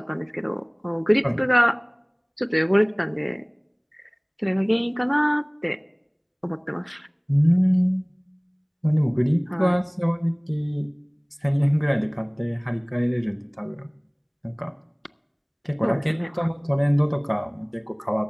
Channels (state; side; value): identical; both; correlation 1.00